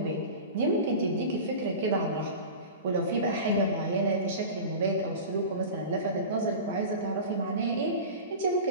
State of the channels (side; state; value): both; inverted; correlation -0.32